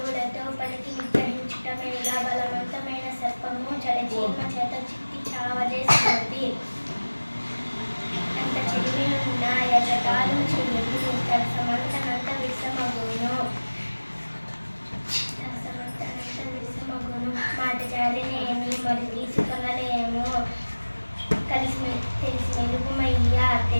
పలికి విగ్రహించుట మేళ బలవంతమైన సర్పము జలచీమ చేత చిక్కి చావదే సుమతి అంత చెడిమి ఉన్న యజకాలు చెయ్యదు సమంతనంత విషమగును మాట జారినేమి మరి తీసుకొనలేము కలిసి తెలిసి మెలుగుమయ్యా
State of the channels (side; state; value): both; inverted; correlation -1.00